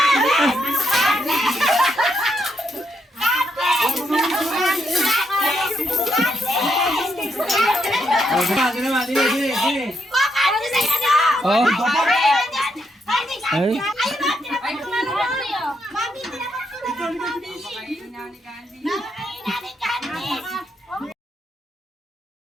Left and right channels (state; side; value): normal; both; correlation 0.79